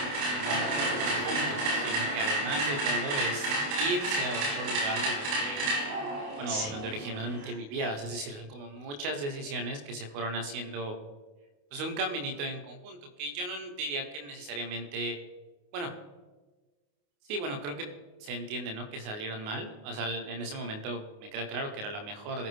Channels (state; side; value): late; left; 28 ms